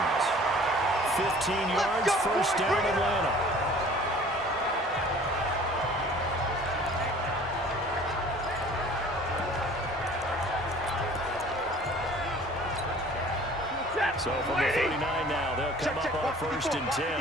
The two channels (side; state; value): both; normal; correlation 0.49